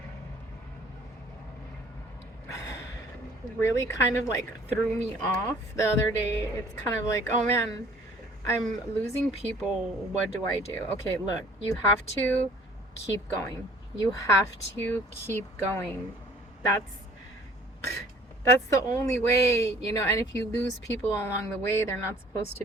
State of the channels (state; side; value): normal; both; correlation 0.54